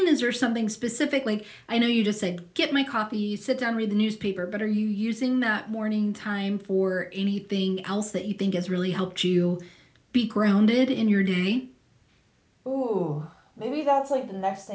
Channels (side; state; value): both; identical; correlation 1.00